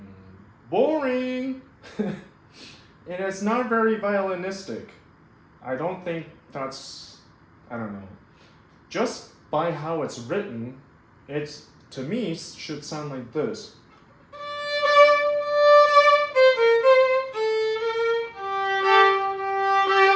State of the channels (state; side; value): identical; both; correlation 1.00